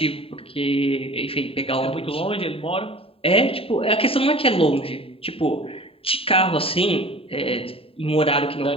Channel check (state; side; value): late; right; 0.27 ms